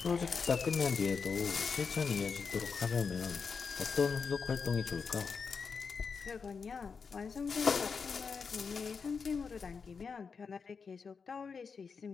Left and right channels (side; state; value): right; quieter; 5.5 dB